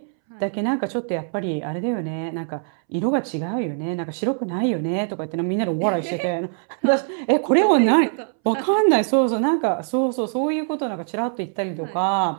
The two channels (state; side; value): silent; left; 64 dB below the other